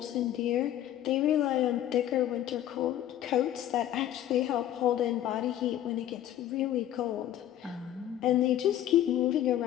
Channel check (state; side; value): quieter; right; 12.0 dB